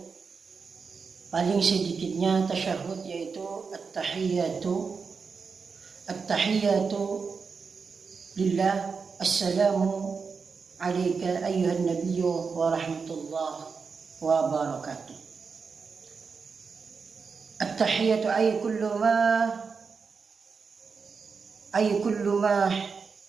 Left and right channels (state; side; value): quieter; left; 5.3 dB